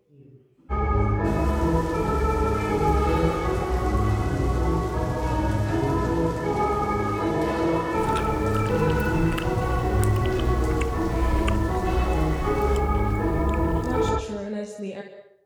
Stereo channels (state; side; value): identical; both; correlation 1.00